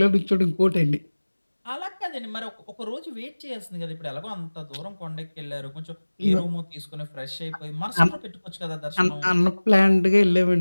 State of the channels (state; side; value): inverted; both; correlation -1.00